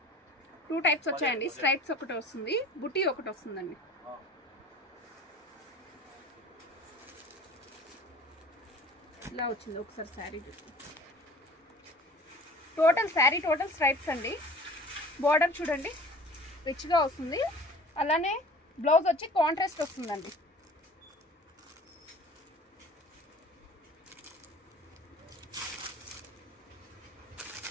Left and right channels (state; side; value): normal; both; correlation 0.44